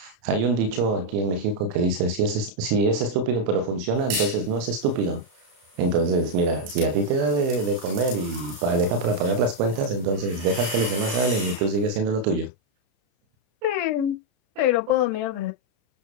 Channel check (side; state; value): left; late; 31 ms